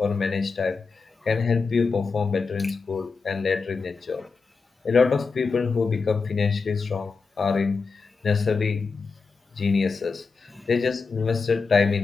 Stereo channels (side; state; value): right; quieter; 4.7 dB